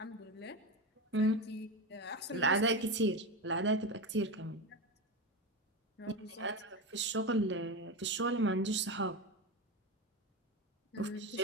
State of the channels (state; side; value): normal; both; correlation 0.18